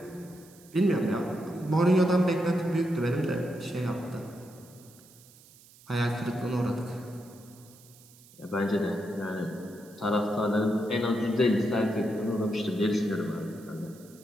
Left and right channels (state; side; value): noise; right; hiss, 24 dB below the sound